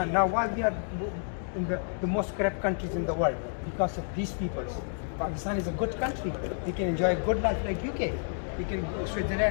now, why we are in the most corrupt countries in the world, because of these people. Pakistan is a good country. We can enjoy a good life like UK. We can,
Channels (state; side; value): silent; right; digital silence